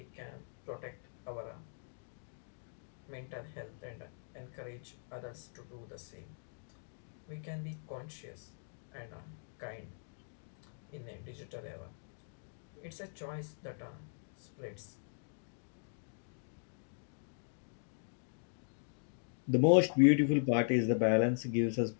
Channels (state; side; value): silent; right; digital silence